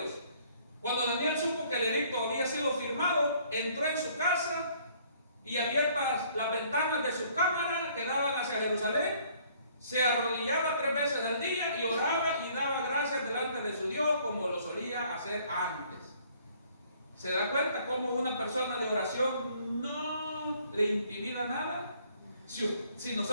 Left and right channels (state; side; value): inverted; both; correlation -0.61